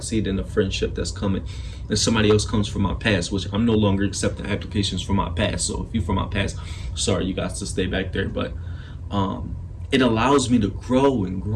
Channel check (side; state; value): both; identical; correlation 1.00